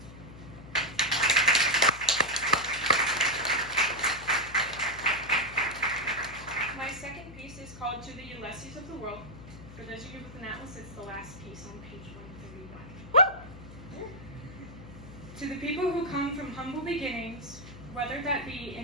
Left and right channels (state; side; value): noise; left; hum, 15 dB below the sound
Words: My second piece is called To the Ulysses of the World. For those of you with an atlas, it's the last piece on page 131. To the people who come from humble beginnings, whether that be